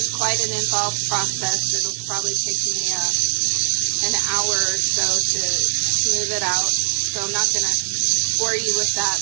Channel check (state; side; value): silent; left; digital silence